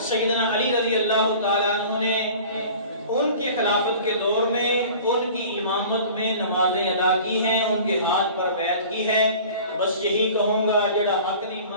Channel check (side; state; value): both; inverted; correlation -0.43